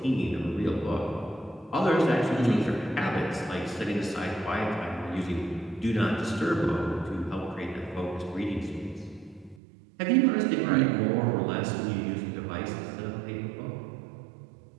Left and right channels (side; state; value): left; drops out; at 9.6 s